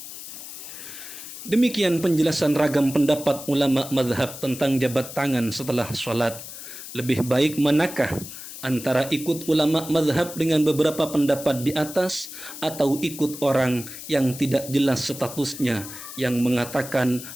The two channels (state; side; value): noise; left; hiss, 12 dB below the sound